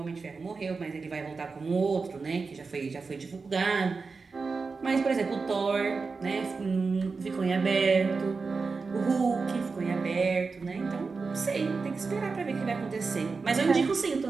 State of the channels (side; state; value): left; quieter; 4.5 dB